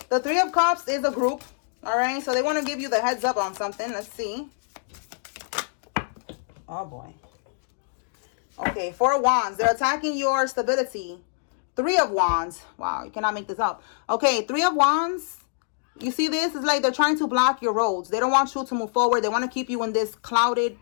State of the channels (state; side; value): silent; right; digital silence